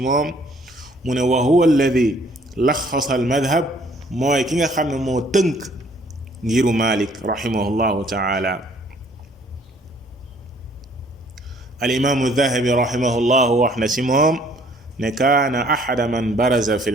mu ne wa huwa alladi laxasa al madhab mooy ki nga xam ne moo tënk ngiru Malik rahimahullahu taala al imaamu Dahabi rahimahullahu wax na si moom ne kaana axada man baraza fi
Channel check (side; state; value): both; normal; correlation 0.60